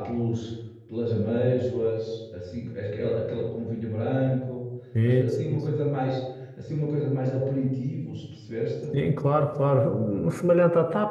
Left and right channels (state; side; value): identical; both; correlation 1.00